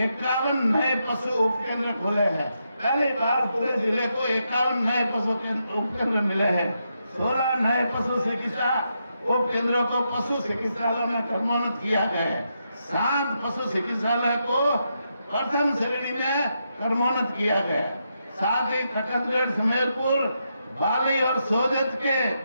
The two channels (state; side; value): inverted; both; correlation -0.82